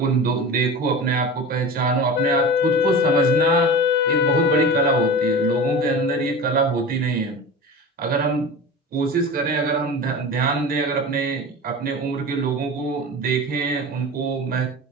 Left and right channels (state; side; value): normal; both; correlation 0.31